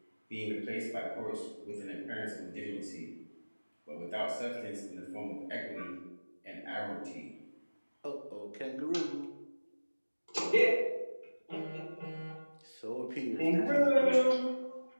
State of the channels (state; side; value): inverted; both; correlation -1.00